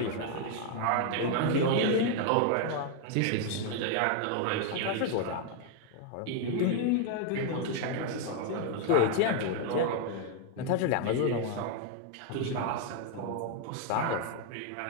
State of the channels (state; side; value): different; both; correlation 0.00